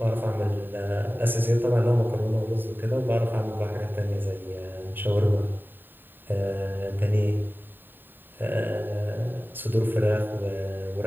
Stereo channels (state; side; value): late; left; 0.093 ms